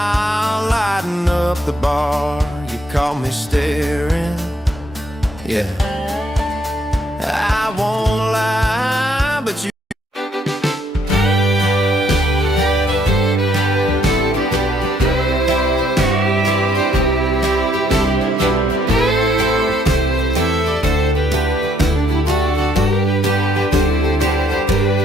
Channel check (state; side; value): normal; both; correlation 0.69